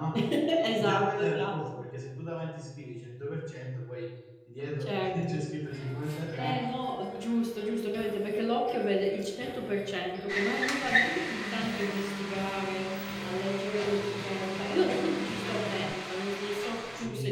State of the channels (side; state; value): both; identical; correlation 1.00